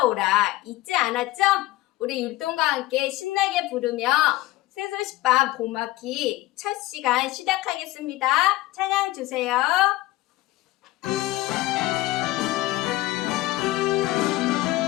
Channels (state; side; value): quieter; right; 17.5 dB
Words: 잊지 않았죠? 우리 율동과 함께 신나게 부르며 새소식반 봄학기 첫 시간 시작하겠습니다. 찬양 주세요.